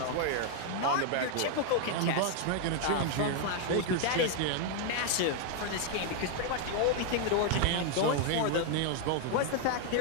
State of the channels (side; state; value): both; different; correlation 0.00